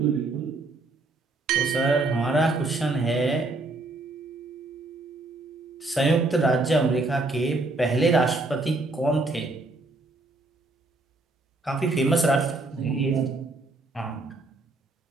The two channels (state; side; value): quieter; left; 3.1 dB